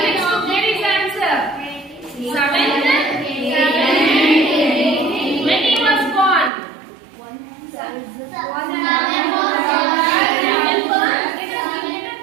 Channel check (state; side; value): drops out; left; at 6.5 s